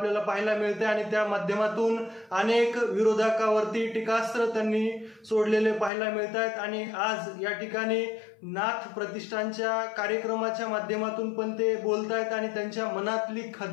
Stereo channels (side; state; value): right; drops out; at 5.9 s